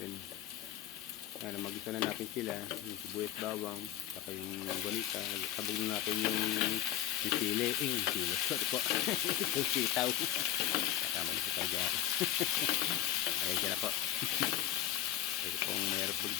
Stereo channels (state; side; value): quieter; right; 12.0 dB